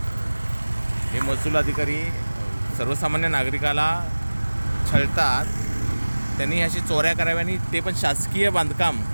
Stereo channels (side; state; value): both; inverted; correlation -1.00